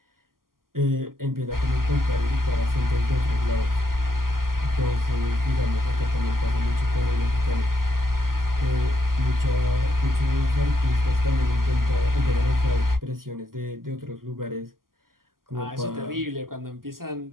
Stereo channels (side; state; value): left; late; 0.92 ms